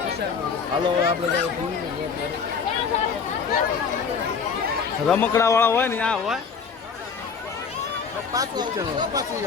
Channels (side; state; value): right; quieter; 5.8 dB